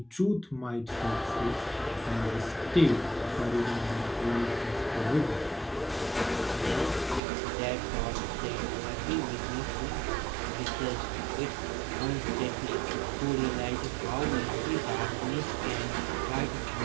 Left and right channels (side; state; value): left; drops out; at 7.2 s